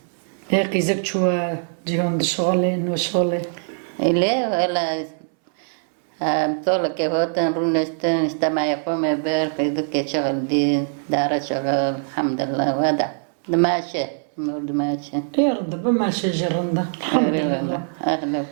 هيك زك شو جيهم دشغلين وشغلي إليه ولا طول كهوتن رونستن استمع يقوم بير في شغل دي دار شغل الحمد لله وهذا دماشي دماشي يرد بما شجرنا الحمد لله أهلا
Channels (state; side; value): silent; left; 64 dB below the other